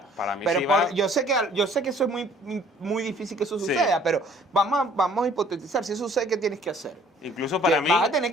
Para mí pero sí va. yo sé que eso es muy difícil que eso Sí. suceda, pero vamos a hipotetizar, si eso sucede, ¿qué tienes que hacer? Incluso para mí, Vas a tener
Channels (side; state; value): both; normal; correlation 0.57